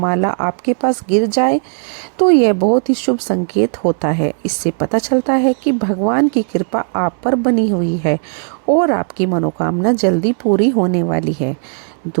आपके पास गिर जाए तो यह बहुत ही शुभ संकेत होता है। इससे पता चलता है कि भगवान की कृपा आप पर बनी हुई है और आपकी मनोकामना जल्दी पूरी होने वाली है।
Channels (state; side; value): silent; left; 67 dB below the other